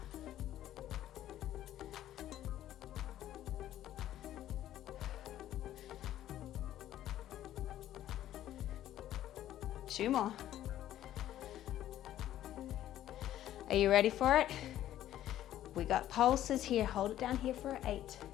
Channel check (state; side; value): quieter; right; 12.6 dB